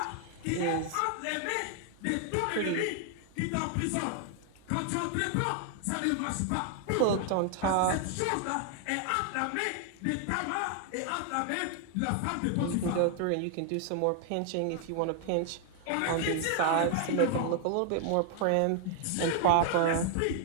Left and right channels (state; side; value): different; both; correlation 0.00